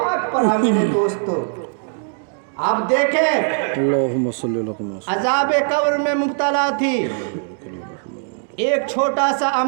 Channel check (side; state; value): left; silent; digital silence